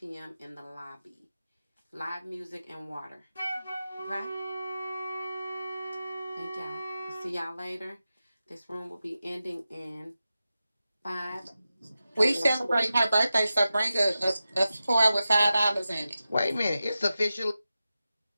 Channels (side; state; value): both; inverted; correlation -0.93